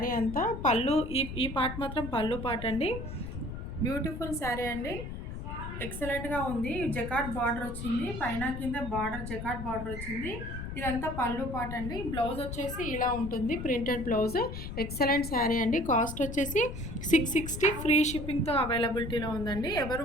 అంతా. పళ్ళు ఈ పార్ట్ మాత్రం పళ్ళు పార్ట్ అండి. బ్యూటిఫుల్ శారీ అండి. ఎక్సలెంట్గా ఉంది. జకాట్ బార్డర్ వచ్చింది, పైన కింద బార్డర్ జకాట్ బార్డర్ వచ్చింది. ఇదంతా పళ్ళు పార్ట్ అండి. బ్లౌజ్ వచ్చేసి ఇలా ఉంటుంది, ప్రింటెడ్ బ్లౌజ్. ఎక్సలెంట్ శారీ అండి. కాస్ట్ వచ్చేసి 660 ఫ్రీ షిప్పింగ్తో అవైలబిలిటీలో ఉందండి. ఎవరు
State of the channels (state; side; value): noise; left; rumble, 8 dB below the sound